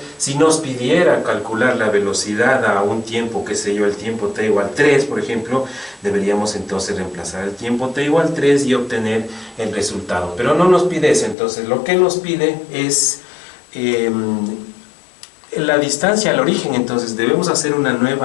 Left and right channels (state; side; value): drops out; right; at 11.4 s